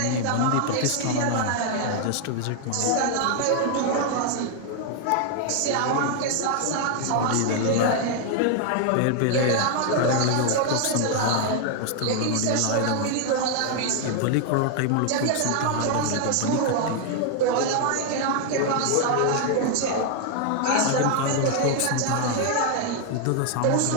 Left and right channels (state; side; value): different; both; correlation 0.00